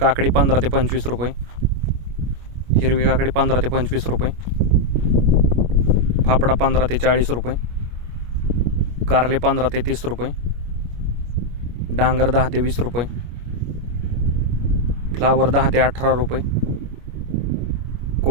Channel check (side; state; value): left; late; 25 ms